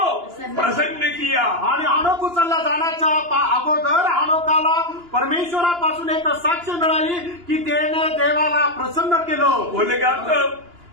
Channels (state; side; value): late; left; 2.9 ms